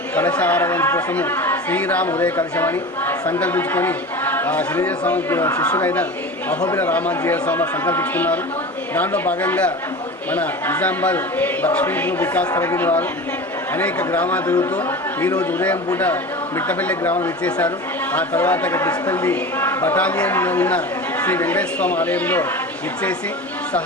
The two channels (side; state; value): both; normal; correlation 0.32